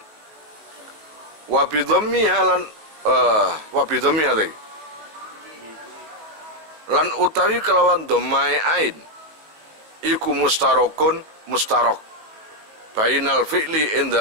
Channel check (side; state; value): left; late; 19 ms